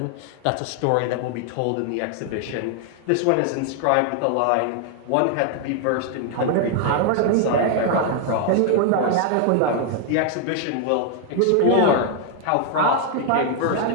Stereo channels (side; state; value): both; different; correlation 0.00